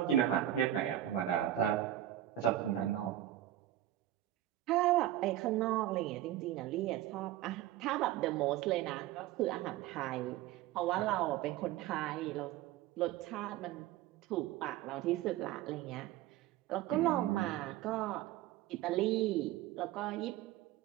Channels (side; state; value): left; quieter; 13.3 dB